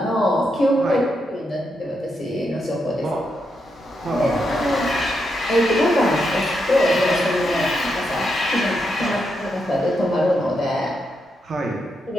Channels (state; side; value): normal; both; correlation 0.83